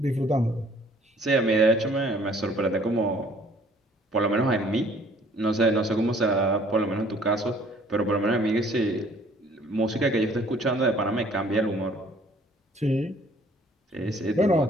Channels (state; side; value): normal; both; correlation 0.58